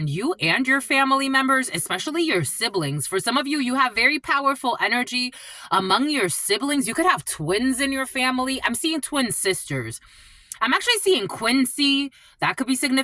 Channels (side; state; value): both; identical; correlation 1.00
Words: you and your family members, especially your siblings. For some of you, you have very powerful energy among your siblings. You could have twins in your family. I'm seeing twin sisters. I'm actually seeing Quincy. That could be